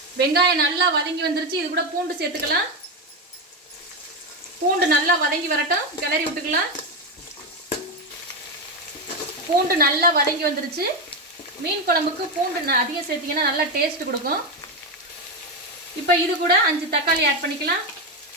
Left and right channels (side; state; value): both; normal; correlation 0.11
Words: வெங்காயம் நல்லா வதங்கி வந்துருச்சு. இது கூட பூண்டு சேர்த்துக்கலாம். பூண்டு நல்லா வதங்கி வரட்டும், கிளறி விட்டுக்கலாம். பூண்டு நல்லா வதங்கி வந்துருச்சு. மீன் குழம்புக்கு பூண்டு அதிகம் சேர்த்திங்கன்னா நல்லா டேஸ்ட் கொடுக்கும். இப்போ இது கூட 5 தக்காளி ஆட் பண்ணிக்கலாம்.